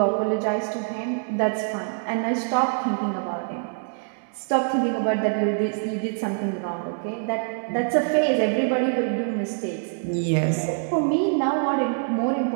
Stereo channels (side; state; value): left; silent; 61 dB below the other